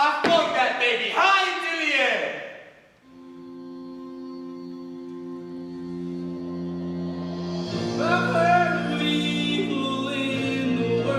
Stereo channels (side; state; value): both; identical; correlation 1.00